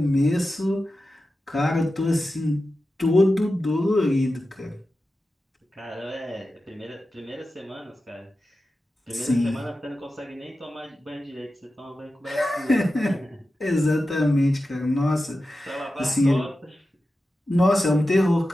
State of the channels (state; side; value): normal; both; correlation 0.92